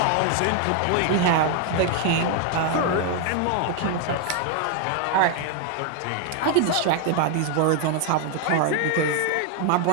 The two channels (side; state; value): both; different; correlation 0.00